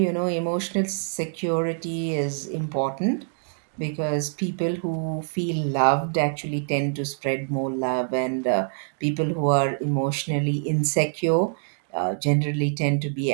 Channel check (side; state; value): left; silent; digital silence